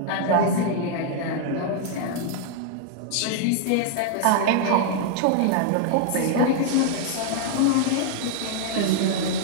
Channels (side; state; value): both; different; correlation 0.00